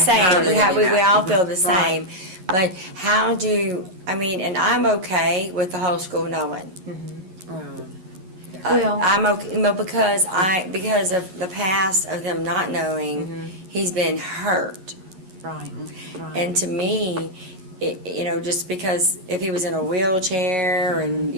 same. how they're We getting all that. feel the Right. same. But how do, I mean, and I'm okay with the whole school knowing. Wow. Well- I'm okay, no, because of the past of them not knowing, he's been hurt. Right, right. And to me, just because if he was in a wheelchair and,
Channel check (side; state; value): left; late; 11 ms